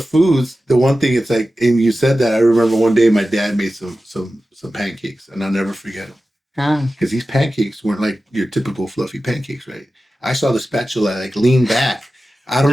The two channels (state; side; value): normal; both; correlation 0.94